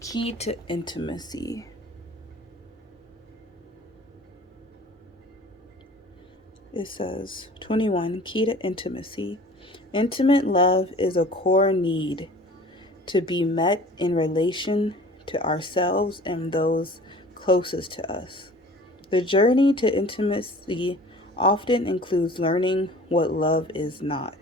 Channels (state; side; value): normal; both; correlation 0.45